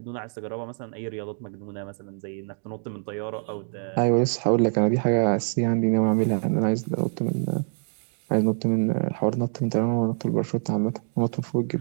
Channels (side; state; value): left; silent; digital silence